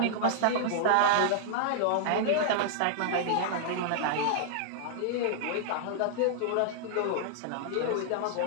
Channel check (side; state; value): both; different; correlation -0.01